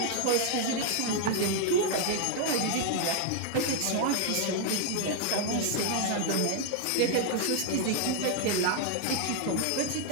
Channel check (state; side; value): different; both; correlation 0.00